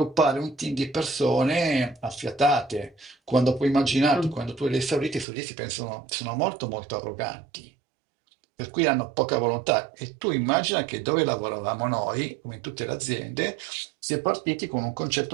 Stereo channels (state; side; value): drops out; left; at 5.2 s